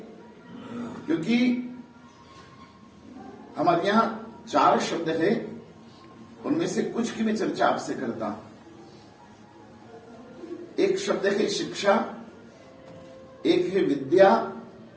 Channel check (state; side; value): identical; both; correlation 1.00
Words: क्योंकि हमारे यहां 4 शब्द है, उनमें से कुछ की मैं चर्चा आपसे करता हूं। एक शब्द है शिक्षा, एक है विद्या,